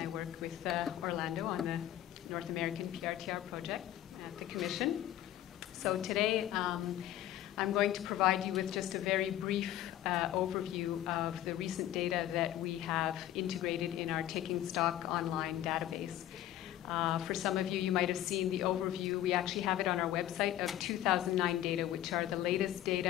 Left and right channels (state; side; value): quieter; right; 12.8 dB